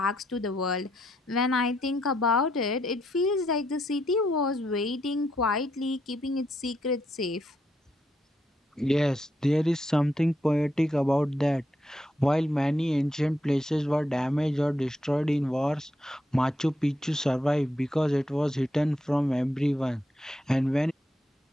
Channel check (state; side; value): normal; both; correlation 0.78